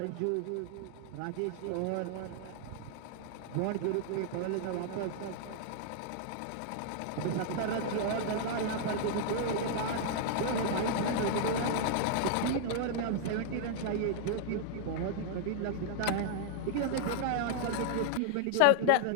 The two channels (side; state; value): both; different; correlation -0.01